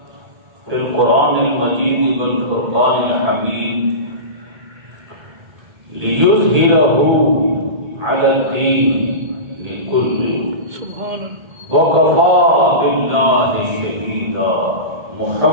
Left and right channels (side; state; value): left; late; 1.8 ms